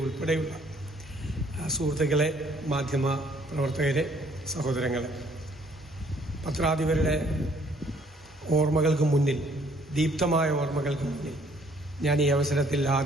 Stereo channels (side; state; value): both; normal; correlation 0.62